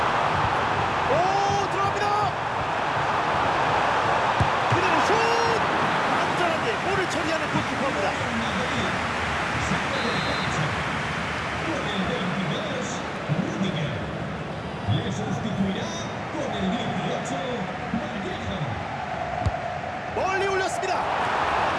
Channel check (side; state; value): both; identical; correlation 1.00